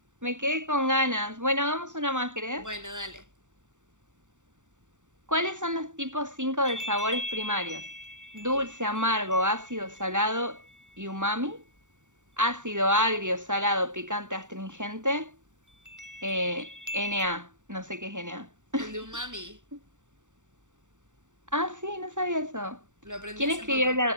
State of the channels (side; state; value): left; late; 0.86 ms